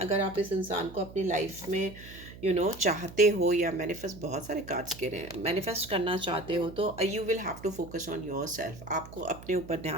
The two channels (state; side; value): noise; right; hum, 16 dB below the sound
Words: आप इस इंसान को अपनी लाइफ में चाहते हो, या मैनिफेस्ट, बहुत सारे कार्ड्स कह रहे हैं, मैनिफेस्ट करना चाहते हो, तो you will have to focus on yourself. आपको अपने ऊपर